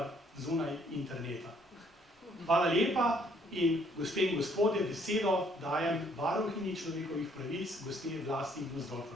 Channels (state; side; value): normal; both; correlation 0.65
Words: zunaj interneta. Hvala lepa in gospe in gospodje, besedo dajem varuhinji človekovih pravic, gospe Vlasti